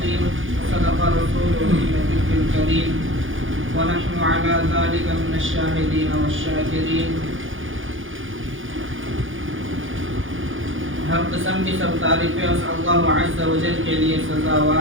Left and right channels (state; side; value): late; left; 0.58 ms